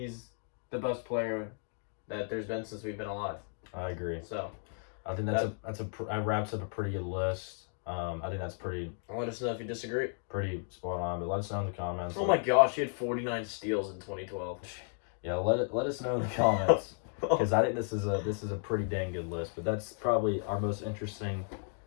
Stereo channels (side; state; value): right; silent; 55 dB below the other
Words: the best player that there's been since we've been alive. I agree. So I think that wraps up a pretty good list. I think that's pretty. Let us know if you disagree. Pretty spot on, but let us know in the comments. Oh my gosh, he had 49 steals in 2012. Yeah, let us know in the comments because I think this is a pretty dang good list. But that's probably our most interesting